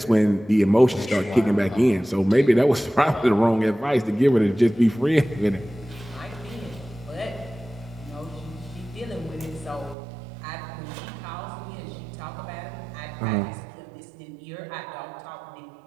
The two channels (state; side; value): drops out; left; at 10.0 s